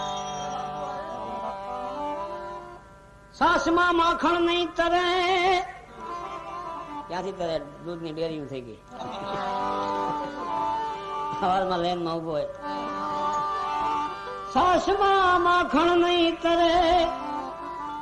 સાસમાં માખણ નહીં તરે, ક્યાંથી તરે? દૂધની ડેરી થઈ ગઈ. સવારમાં લેન માં ઉભો હોય. સાસમાં માખણ નહીં તરે,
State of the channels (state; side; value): identical; both; correlation 1.00